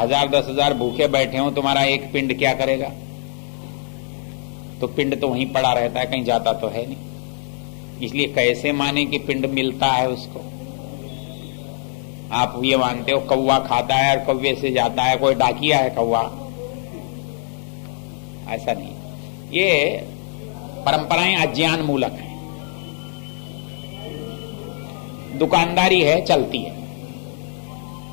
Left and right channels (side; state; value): right; silent; 58 dB below the other